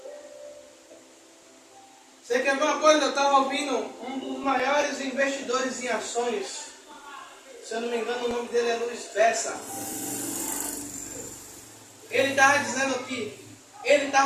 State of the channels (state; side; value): identical; both; correlation 1.00